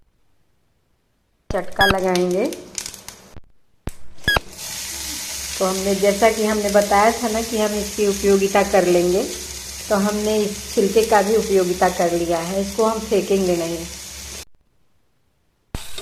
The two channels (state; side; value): identical; both; correlation 1.00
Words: चटका लगाएंगे। तो हमने, जैसा कि हमने बताया था ना कि हम इसकी उपयोगिता कर लेंगे, तो हमने इस छिलके का भी उपयोगिता कर लिया है। इसको हम फेंकेंगे नहीं।